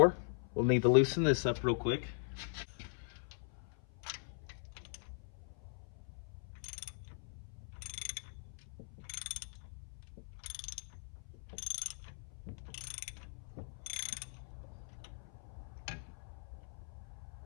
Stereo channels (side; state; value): right; silent; 51 dB below the other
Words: We'll need to loosen this up real quick.